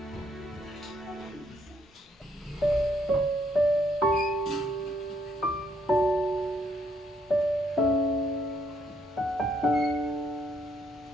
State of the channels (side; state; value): both; normal; correlation 0.71